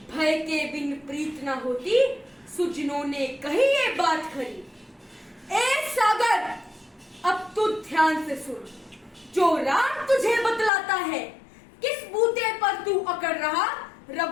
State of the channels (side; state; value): right; drops out; at 10.7 s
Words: भय के बिन प्रीत न होती, सुजनों ने कही ये बात खरी। ए सागर, अब तू ध्यान से सुन, जो राम तुझे बतलाता है। किस बूते पर तू अकड़ रहा,